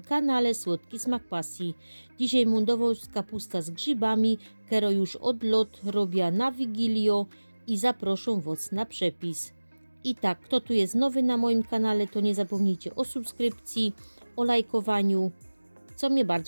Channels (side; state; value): both; inverted; correlation -1.00